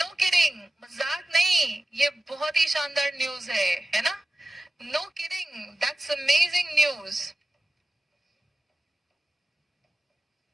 kidding, मजाक नहीं, ये बहुत ही शानदार न्यूज है ना। No kidding, that's amazing news.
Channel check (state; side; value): normal; both; correlation 0.94